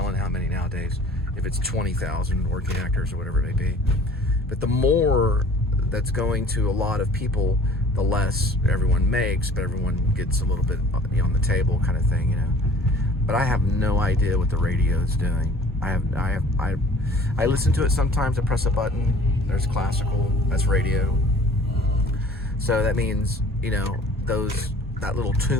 how many nowadays, if it's 20,000 working actors or whatever it may be. But the more that's going to a lot of people, the less everyone makes, but everyone gets a little bit on the table kind of thing, But I have no idea what the radio is doing. I listen to it sometimes. I press a button. There's classical. That's radio. So that means that little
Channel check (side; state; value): both; normal; correlation 0.50